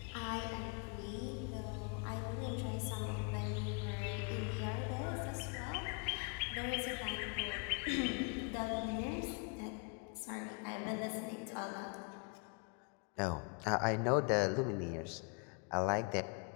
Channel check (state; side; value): quieter; right; 36.0 dB